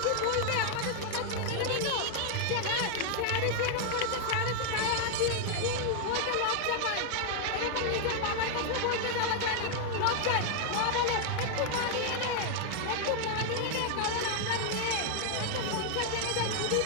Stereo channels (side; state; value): both; different; correlation 0.00